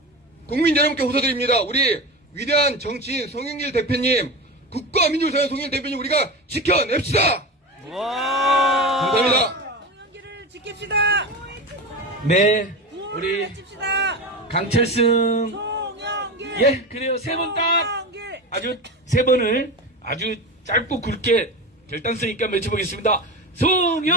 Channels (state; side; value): normal; both; correlation 0.24